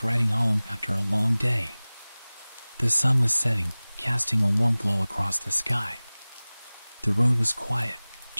riding home after a long day. The sun was setting, casting a warm glow across the sky. The road was quiet,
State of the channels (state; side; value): inverted; both; correlation -0.99